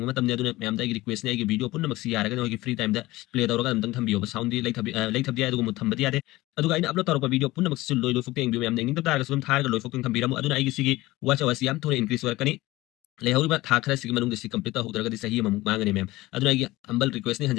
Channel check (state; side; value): quieter; right; 18.8 dB